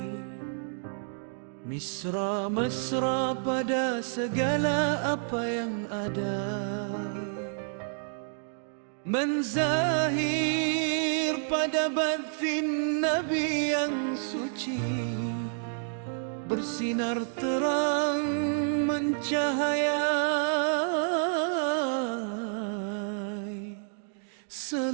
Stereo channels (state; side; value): silent; left; digital silence